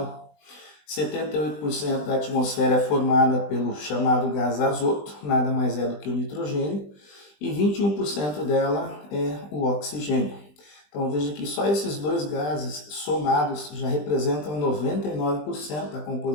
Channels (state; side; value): late; right; 20 ms